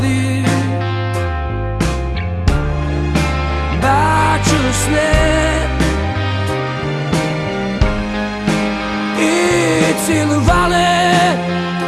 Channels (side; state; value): both; identical; correlation 1.00